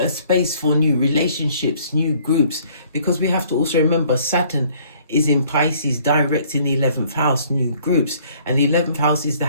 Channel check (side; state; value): both; inverted; correlation -0.59